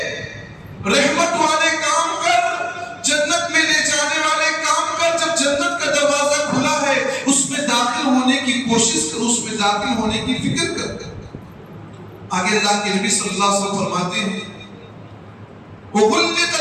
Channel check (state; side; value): identical; both; correlation 1.00